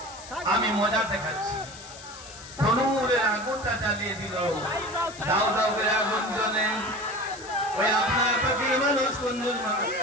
আমি মজা দেখাচ্ছি। তনুরের আগুনটা জ্বালিয়ে দিল। দাও দাও করে আগুন জ্বলে। ওই আপনার পাখির মানুষ, কুঞ্জুস মানুষ,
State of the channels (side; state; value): left; noise; hiss, 16 dB below the sound